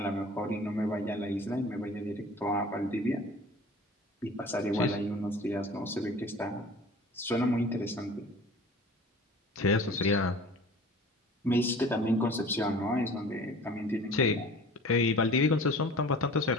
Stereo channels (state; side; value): normal; both; correlation 0.44